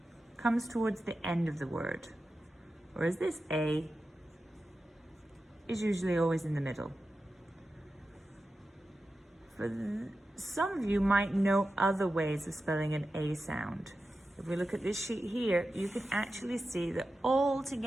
comes towards the end of the word, whereas this A is usually always in the middle. Some of you might know other ways of spelling an A sound. If we look at this sheet here, you can actually see that all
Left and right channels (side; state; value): both; normal; correlation 0.92